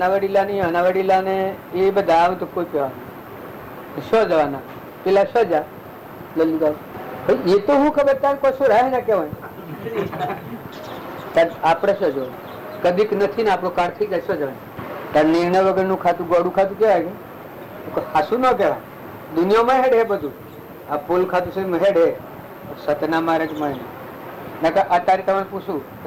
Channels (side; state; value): both; identical; correlation 1.00